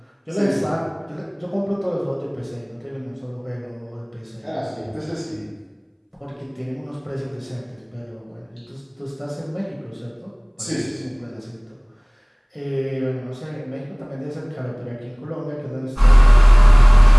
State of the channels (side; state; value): both; identical; correlation 1.00